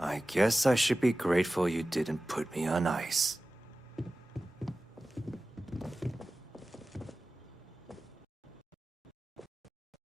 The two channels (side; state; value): both; normal; correlation 0.96